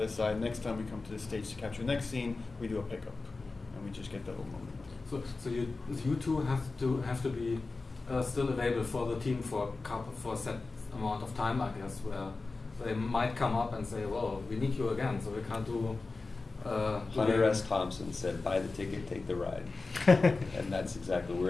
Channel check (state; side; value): quieter; right; 3.7 dB